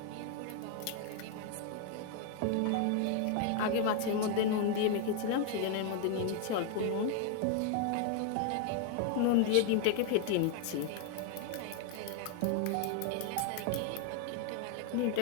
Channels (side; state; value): both; different; correlation 0.00